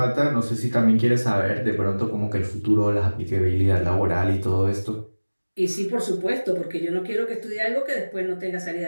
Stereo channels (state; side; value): inverted; both; correlation -1.00